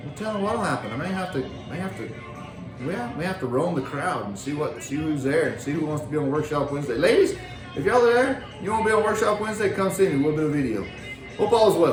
I'm telling you what'll happen. I may have to roam the crowd and see who's there and see who wants to be on Workshop Wednesday. Ladies, if y'all are there, you want to be on Workshop Wednesday, come see me. We'll do a video. Hope all is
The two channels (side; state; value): both; identical; correlation 1.00